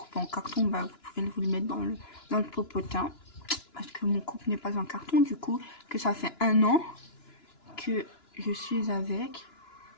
en carton, bah, vous pouvez vous le mettre dans le popotin. Parce que mon couple n'est pas un carton, du coup, que ça fait 1 an que je suis avec.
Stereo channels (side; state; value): right; late; 2.9 ms